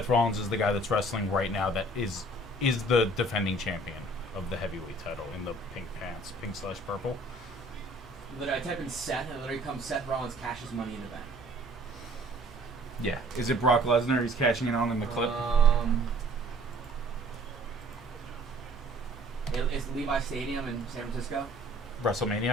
Rollins is the guy that's wrestling right now that is the defending champion of the heavyweight title in the pink pants, pink/purple. Literally, I type in Seth and it literally comes Seth Rollins cashes Money in the Bank. Yeah. Is it Brock Lesnar he's cashing it on in the clip? It's Levi Stadium in San Francisco.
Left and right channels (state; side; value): normal; both; correlation 0.54